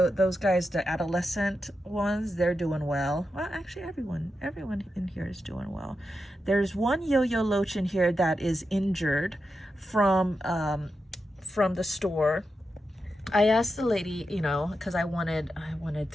guys, the adolescent ones, they're doing well. Well, actually everyone in here is doing well. There's one yo-yo loach in here that is injured from the store. I asked the lady, you know, because I wanted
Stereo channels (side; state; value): both; normal; correlation 0.88